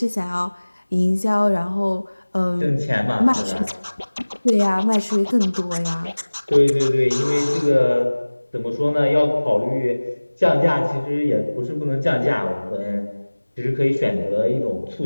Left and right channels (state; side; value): inverted; both; correlation -1.00